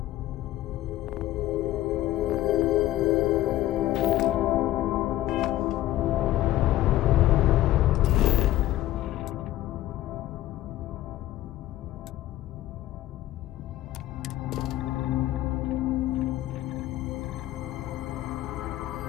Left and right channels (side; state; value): right; quieter; 14.8 dB